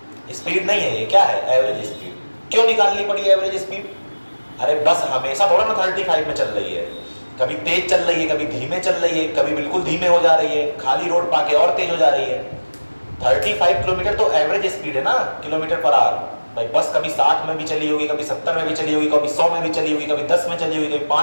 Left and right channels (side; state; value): both; inverted; correlation -1.00